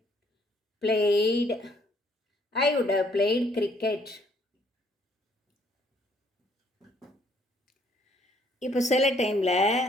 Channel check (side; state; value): both; normal; correlation 0.65